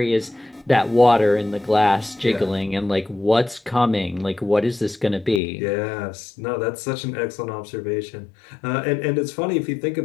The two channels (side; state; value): right; drops out; at 5.4 s